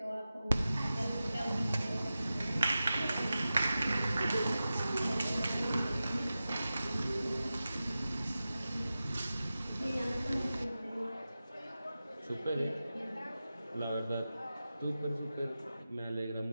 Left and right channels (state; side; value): inverted; both; correlation -0.94